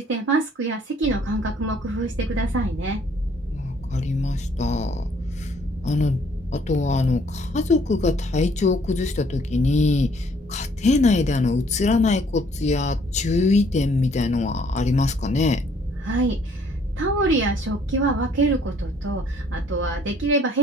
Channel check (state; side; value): normal; both; correlation 0.62